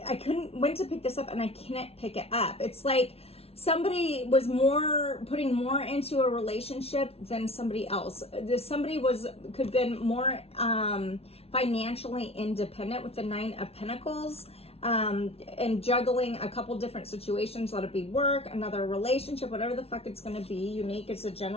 went to pick this up and I can't pick it up. It's like somebody was putting more into a relationship than somebody else. Somebody could have been more financially independent with the 9 of Pentacles. And juggling a couple different situations, let it be work, another relationship, whatever the fuck it's going to be, unique. It's a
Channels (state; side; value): late; right; 0.29 ms